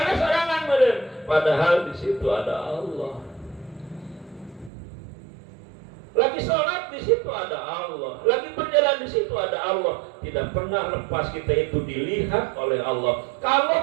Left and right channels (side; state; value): left; drops out; at 4.7 s